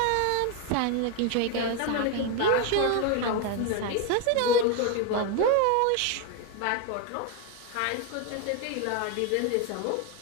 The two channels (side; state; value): both; different; correlation 0.01